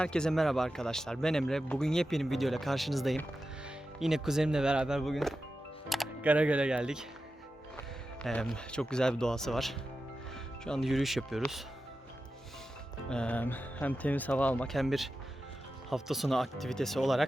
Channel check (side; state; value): both; normal; correlation 0.92